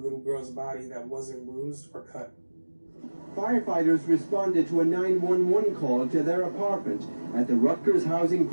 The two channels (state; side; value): inverted; both; correlation -1.00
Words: girl's body that wasn't bruised or cut. Firefighters responded to a 911 call to their apartment at the Rutgers Housing